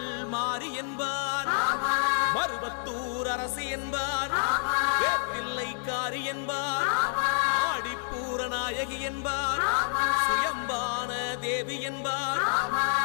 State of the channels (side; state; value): right; silent; 59 dB below the other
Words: மாறி என்பார், மருவத்தூர் அரசி என்பார், வேப்பிள்ளைக்காரி என்பார், ஆடிப்பூர நாயகி என்பார், சுயம்பான தேவி என்பார்,